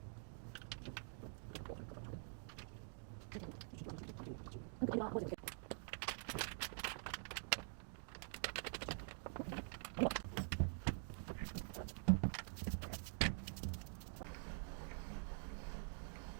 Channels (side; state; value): left; silent; digital silence